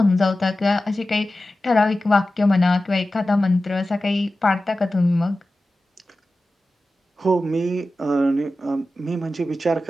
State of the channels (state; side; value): normal; both; correlation 0.94